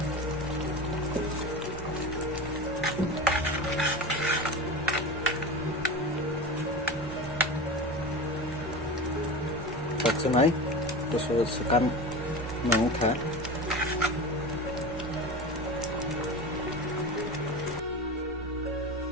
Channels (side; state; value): both; normal; correlation 0.28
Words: Senai, terus sekan mengukar.